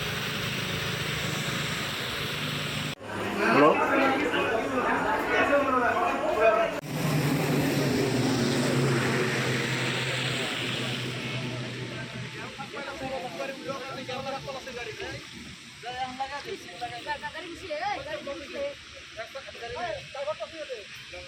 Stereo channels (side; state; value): both; identical; correlation 1.00